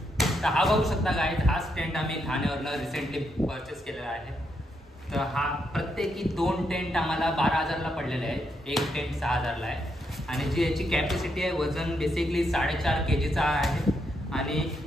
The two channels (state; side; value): normal; both; correlation 0.79